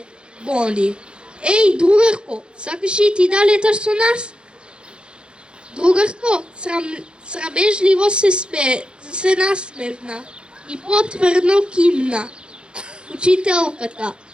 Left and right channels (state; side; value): late; left; 0.053 ms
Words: Боди. Еј, другарко, сакаш и ти да леташ со нас? Другарко, срамежливо се насмевна и потврдно кимна. Учителката: